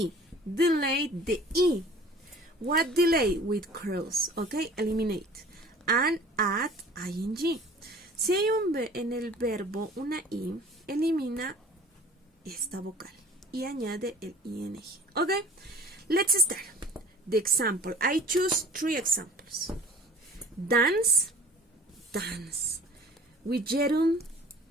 delay the E. What delay? With curls, okay? Eliminate. And add ing. Si hay en el verbo una I, elimina esta vocal y añade el ing. Okay? Let's start. The example. I choose 3 examples. Dance, dance. With Jerome,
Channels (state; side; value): normal; both; correlation 0.47